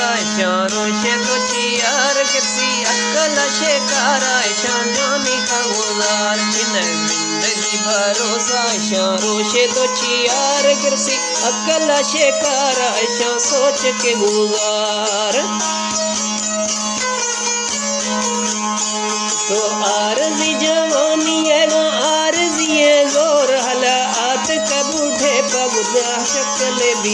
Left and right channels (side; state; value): both; identical; correlation 1.00